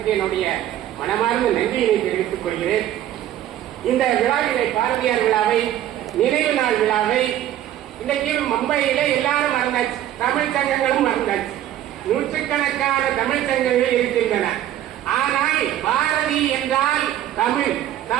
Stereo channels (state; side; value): quieter; left; 12.3 dB